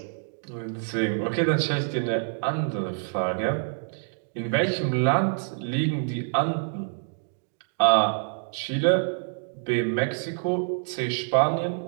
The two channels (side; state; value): left; silent; digital silence